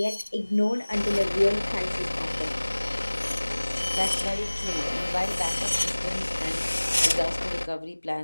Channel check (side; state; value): both; inverted; correlation -1.00